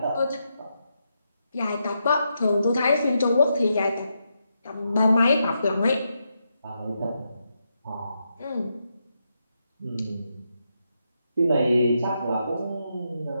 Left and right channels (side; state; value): both; inverted; correlation -0.83